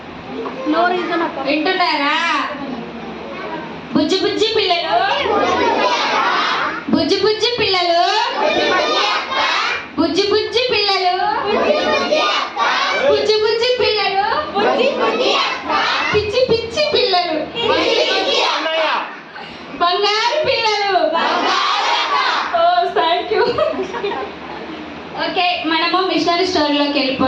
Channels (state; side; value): identical; both; correlation 1.00